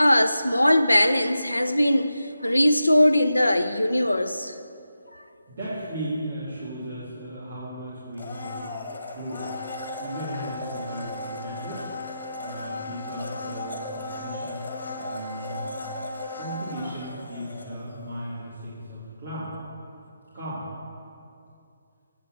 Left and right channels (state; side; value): inverted; both; correlation -0.90